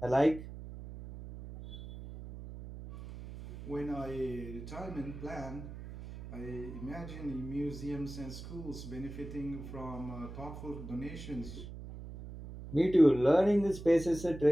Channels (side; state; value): right; noise; hum, 11 dB below the sound